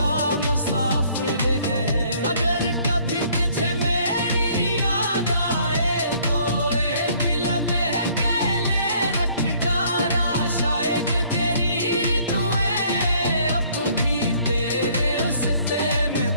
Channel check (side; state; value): both; inverted; correlation -0.61